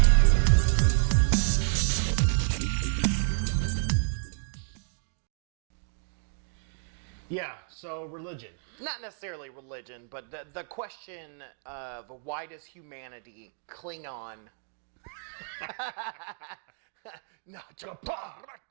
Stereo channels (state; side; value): silent; left; digital silence